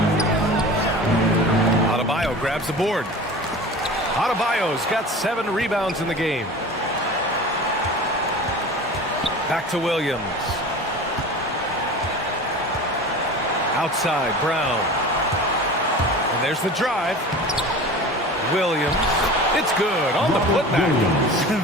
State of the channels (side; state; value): both; normal; correlation 0.36